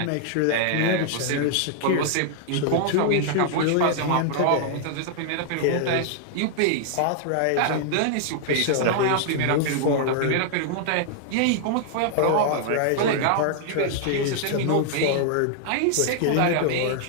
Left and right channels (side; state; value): both; different; correlation -0.01